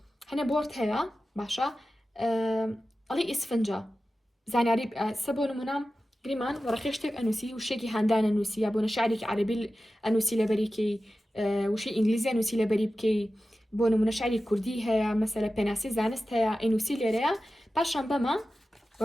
هەنێ بۆرد هەیە باشە ئەڵی ئیسفنجە زانیاری سە بۆ نمونە گریمان وەرەقی شتێک ئەنووسی وشێکی هەندانە نووسی یا بۆ نەشارێکی عەرەبی ئەنووسی لەبەریکەی وشەی ئینگلیزی ئەنووسی لەبەری بکەی بۆ نمونە شعری کوردی هەیە مەسەلە پێناسی زانست هەیە ئەنووسی لێرەیە پاشان بەمە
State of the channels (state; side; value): normal; both; correlation 0.94